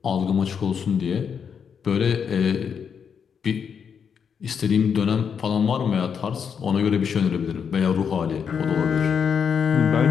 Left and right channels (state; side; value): quieter; right; 7.0 dB